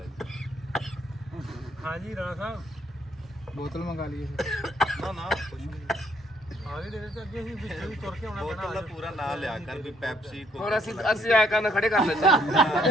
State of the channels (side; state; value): both; normal; correlation 0.68